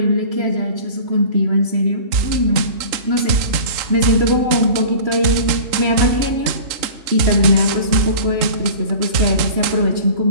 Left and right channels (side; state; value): left; late; 3.7 ms